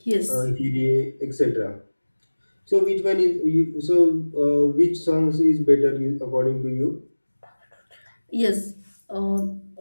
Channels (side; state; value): both; inverted; correlation -1.00